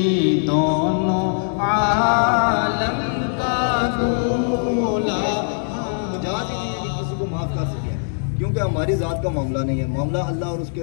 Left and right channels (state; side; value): silent; right; digital silence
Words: دونوں عالم کا دولا. جہاں سے کسی کو معاف کر سکے، کیونکہ ہماری ذات کا معاملہ نہیں ہے، معاملہ اللہ اور اس